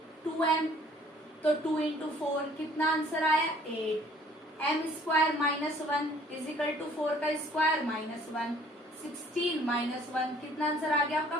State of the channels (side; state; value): both; normal; correlation 0.56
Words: 2m, तो 2 इंटू 4 कितना आंसर आया 8। m square minus 1 equal to 4 का स्क्वायर माइनस 1, 16 माइनस 1 कितना आंसर आ गया आपका